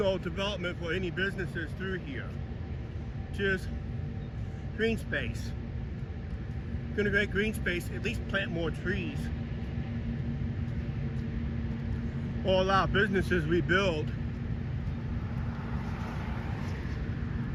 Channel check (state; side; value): identical; both; correlation 1.00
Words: development for any businesses through here. Just green space. Gonna create green space, at least plant more trees. Or allow businesses rebuild.